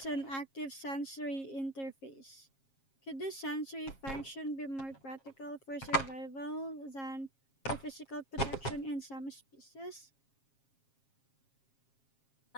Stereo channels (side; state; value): right; late; 7.4 ms